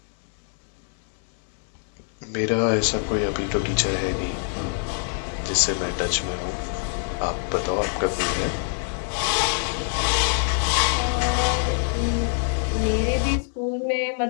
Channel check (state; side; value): silent; right; 62 dB below the other